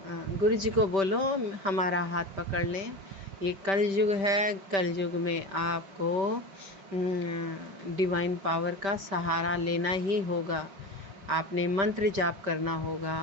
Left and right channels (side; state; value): left; late; 5.1 ms